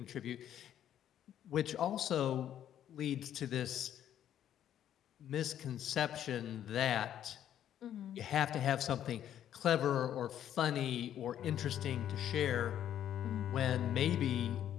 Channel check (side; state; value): right; quieter; 10.6 dB